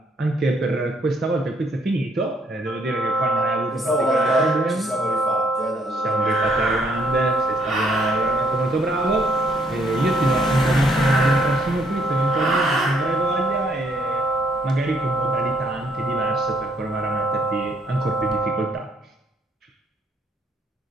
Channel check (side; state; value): both; normal; correlation 0.67